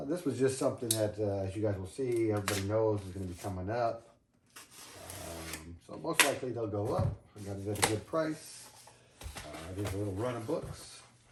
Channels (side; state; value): both; identical; correlation 1.00